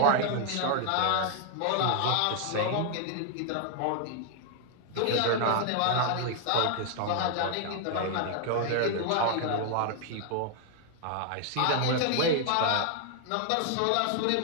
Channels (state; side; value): different; both; correlation 0.00